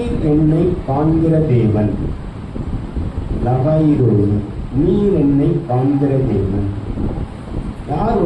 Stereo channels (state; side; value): identical; both; correlation 1.00